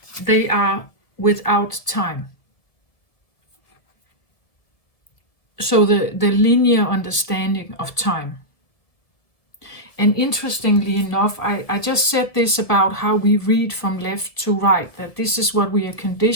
They are without time. So the linear understanding of time. And interestingly enough, I just said this about how we read from left to right, that this is what we are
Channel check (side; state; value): right; late; 1.5 ms